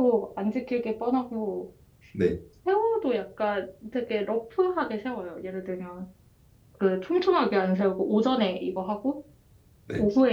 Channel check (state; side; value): identical; both; correlation 1.00